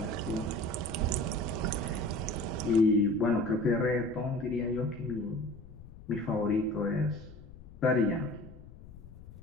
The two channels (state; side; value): noise; left; rumble, 17 dB below the sound